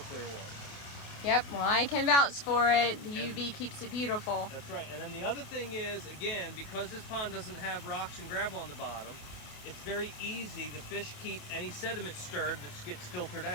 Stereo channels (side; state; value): right; late; 29 ms